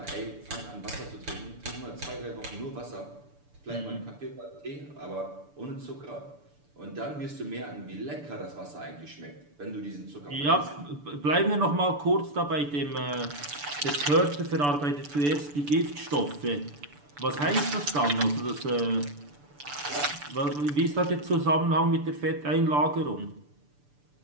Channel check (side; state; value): left; late; 6.9 ms